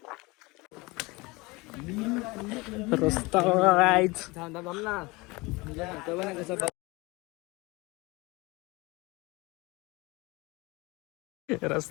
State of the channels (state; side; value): quieter; right; 24.1 dB